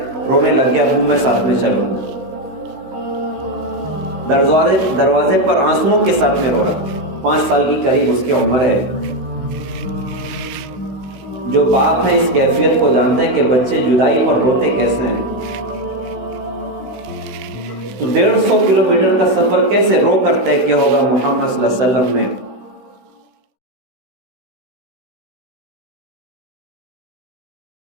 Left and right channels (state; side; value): late; left; 16 ms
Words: رونے لگ گیا، ابو میں ساتھ میں چلوں گا۔ دروازے پر آنسوؤں کے ساتھ میں رو رہا، 5 سال کی قریب اس کی عمر ہے۔ جو باپ ہے اس کیفیت کو جانتے ہیں کہ بچے جدائی پر روتے کیسے ہیں۔ تو 150 کلومیٹر کا سفر کیسے رو کر طے کیا ہوگا محمد صلی اللہ علیہ وسلم نے۔